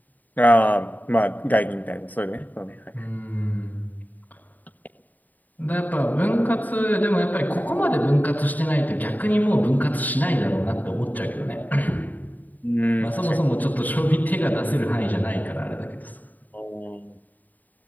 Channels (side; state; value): right; late; 0.083 ms